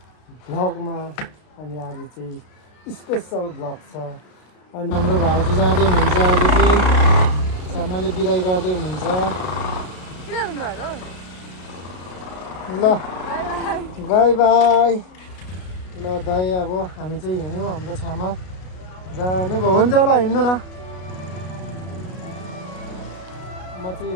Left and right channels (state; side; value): late; right; 32 ms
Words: भ्लगमा। अनि आज चाहिँ स्पेशल भ्लग छ। अनि हाम्रो भाउजू जाँदै हुनुहुन्छ। आज चाहिँ छामाले बिदाई गर्दै हुनुहुन्छ। ल बाई बाई। ल दाइ अब हामी चाहिँ हिँड्यौँ। हाम्रो छामा जानुभयो। हुन्छ ल हिँड्नु न। म चाहिँ